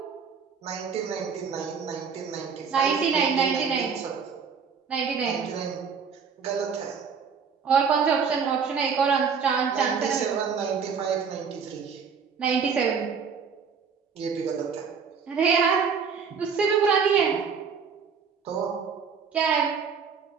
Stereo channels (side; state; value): left; quieter; 6.2 dB